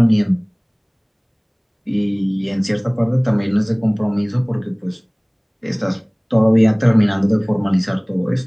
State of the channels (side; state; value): both; identical; correlation 1.00